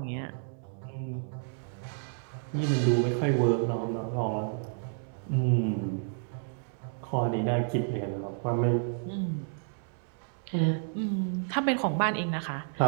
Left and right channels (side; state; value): left; silent; digital silence